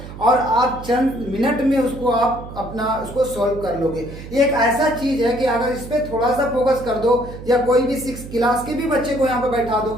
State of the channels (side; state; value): right; noise; hum, 13 dB below the sound